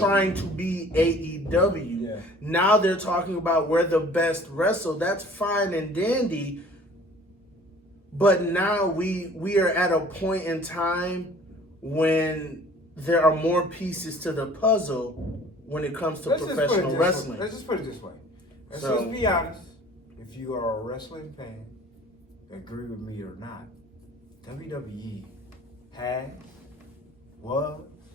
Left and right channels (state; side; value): normal; both; correlation 0.50